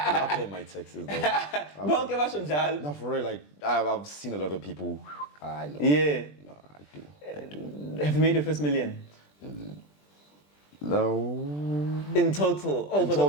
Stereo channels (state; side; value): late; right; 20 ms